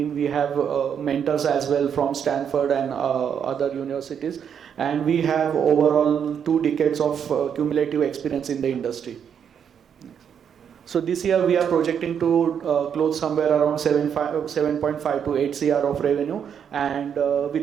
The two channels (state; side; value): quieter; left; 8.0 dB